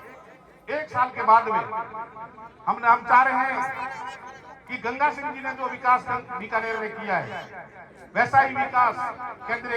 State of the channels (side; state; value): both; identical; correlation 1.00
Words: साल के बाद में हम चाह रहे हैं कि गंगा सिंह जी ने जो विकास बीकानेर में किया है वैसा ही विकास